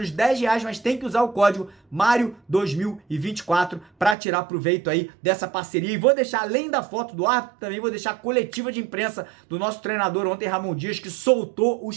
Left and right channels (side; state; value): left; drops out; at 4.2 s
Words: R$ 10, mas tem que usar o código Mário2024 para tirar proveito aí dessa parceria. E vou deixar, além da foto do árbitro, também vou deixar a coletiva de imprensa do nosso treinador ontem, Ramon Dias, que soltou